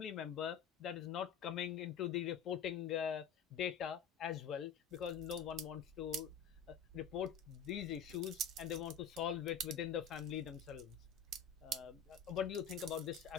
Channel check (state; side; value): quieter; right; 6.5 dB